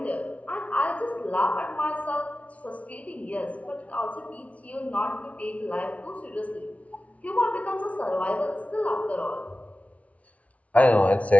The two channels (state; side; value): late; right; 0.066 ms